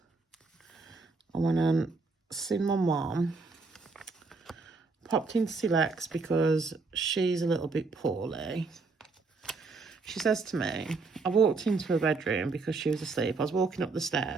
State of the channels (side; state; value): left; quieter; 4.1 dB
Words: I went and seen my mum. Popped into Silex because she's a little bit poorly. She says to me, I walked into her bedroom because she was asleep. I was walking up the